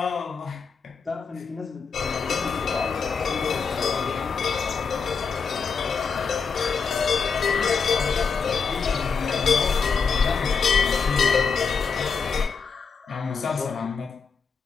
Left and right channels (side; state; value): right; quieter; 5.5 dB